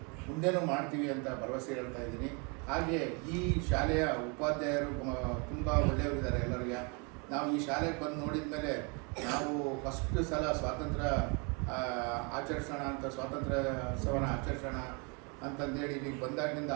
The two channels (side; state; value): left; quieter; 32.7 dB